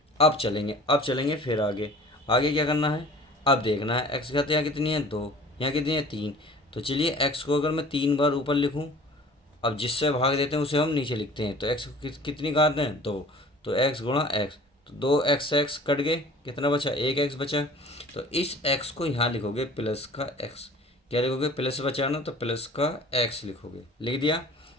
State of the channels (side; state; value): both; normal; correlation 0.46